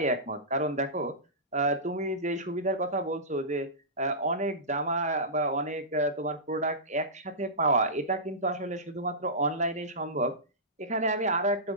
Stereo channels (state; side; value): normal; both; correlation -0.18